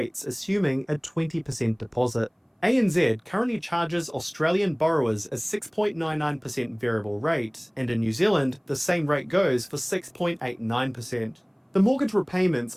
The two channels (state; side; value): identical; both; correlation 1.00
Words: assuming a 20% deposit. ANZ currently charges Australian borrowers a 6.99% variable rate, and in New Zealand, the same rate goes for 6.89%. The mortgage repayments